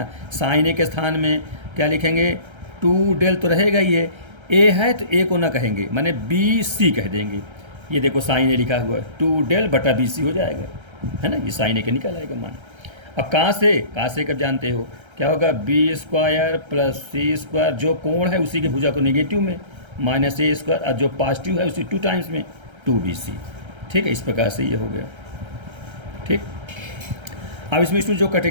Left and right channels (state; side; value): late; left; 1.3 ms